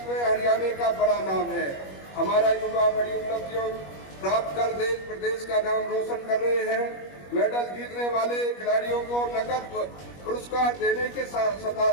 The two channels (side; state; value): right; late; 21 ms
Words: में हरियाणा का बड़ा नाम है। हमारा युवा बड़ी उपलब्धियों प्राप्त कर देश प्रदेश का नाम रोशन कर रहे हैं। मेडल जीतने वाले खिलाड़ियों को नकद पुरस्कार देने के साथ